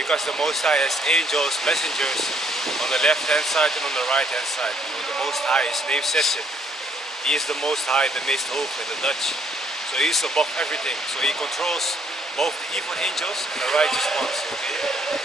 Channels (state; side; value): normal; both; correlation 0.67